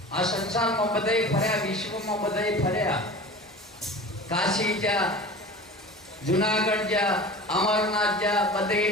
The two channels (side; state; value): both; normal; correlation 0.37